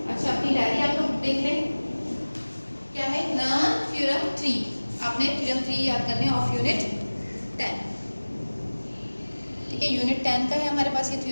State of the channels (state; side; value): inverted; both; correlation -1.00